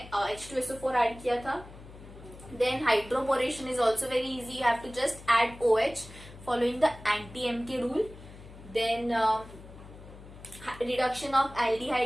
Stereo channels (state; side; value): noise; left; hum, 17 dB below the sound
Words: H2SO4 ऐड किया था. Then hydroboration is also very easy, you have to just add OH following the anti-M rule. Then reduction of